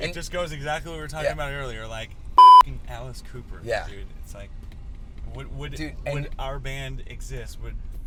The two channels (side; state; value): both; identical; correlation 1.00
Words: just goes exactly what we were talking about earlier. Like, Alice Cooper. Yeah. Dude, it's like, would our band exist? Would